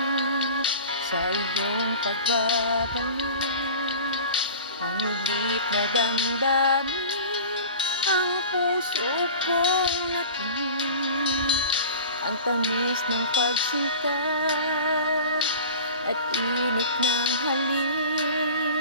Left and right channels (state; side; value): inverted; both; correlation -0.38